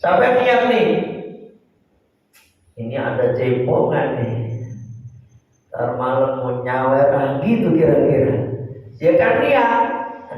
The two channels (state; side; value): identical; both; correlation 1.00